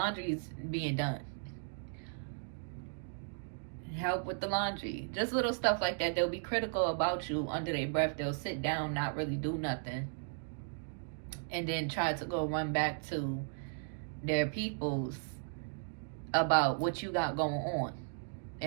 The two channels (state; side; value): silent; left; digital silence